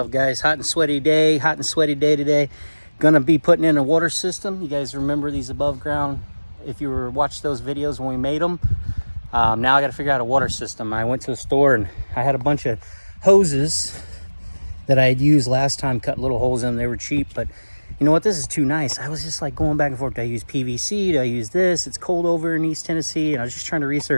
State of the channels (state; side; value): inverted; both; correlation -1.00